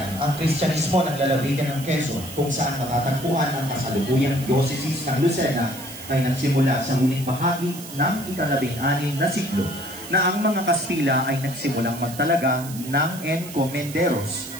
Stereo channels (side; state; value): right; noise; hiss, 14 dB below the sound